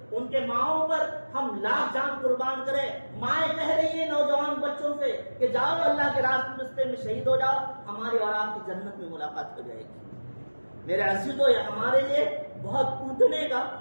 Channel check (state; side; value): inverted; both; correlation -1.00